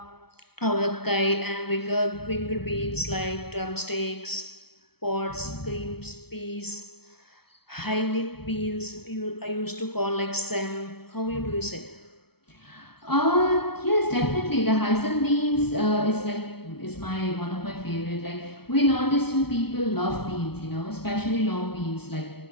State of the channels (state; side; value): late; right; 0.96 ms